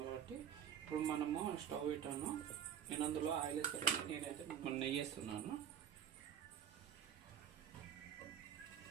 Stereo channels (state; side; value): quieter; left; 9.2 dB